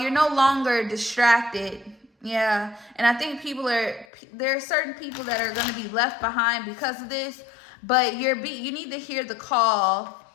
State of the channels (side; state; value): right; drops out; at 4.0 s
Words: no longer distracted. Yeah, and I think there are certain people that are going to be left behind because of this, but you need to hear the call,